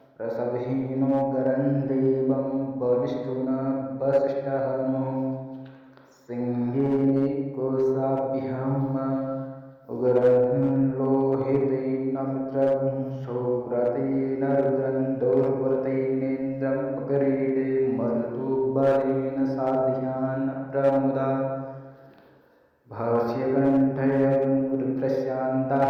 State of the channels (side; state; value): both; identical; correlation 1.00